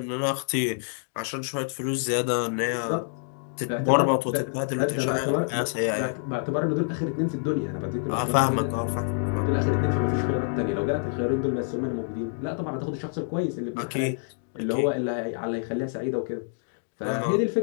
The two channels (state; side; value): silent; right; digital silence